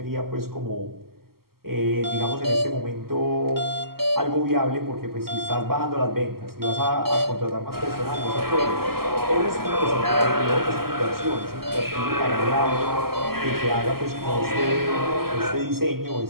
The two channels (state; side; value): late; left; 0.93 ms